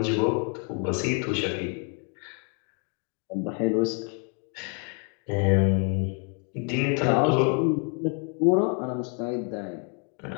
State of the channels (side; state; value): right; quieter; 39.2 dB